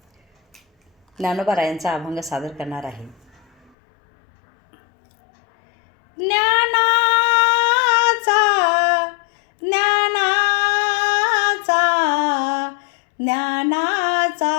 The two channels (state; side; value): drops out; right; at 3.7 s